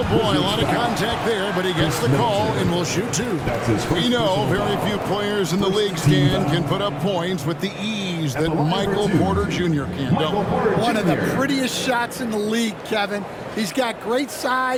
boy, a lot of contact there, but he gets the call and will shoot 2. We know very few players in the league, Stan, can put up points with the ease that Michael Porter Jr. can. One of the prettiest shots in the league, Kevin. He's got great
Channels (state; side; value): identical; both; correlation 1.00